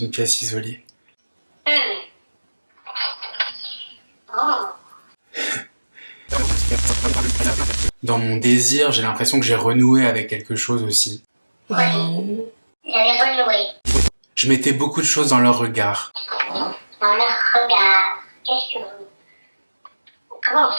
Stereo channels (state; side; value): inverted; both; correlation -1.00